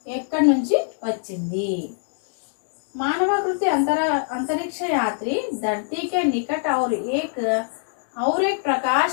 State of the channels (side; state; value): right; silent; digital silence